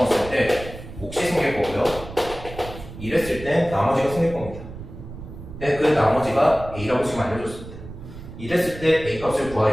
때 몫이 생길 거고요. 이랬을 때 나머지가 생길 겁니다. 근데 그 나머지가 a라고 지금 알려줬습니다. 이랬을 때 a 값을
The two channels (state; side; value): noise; right; rumble, 13 dB below the sound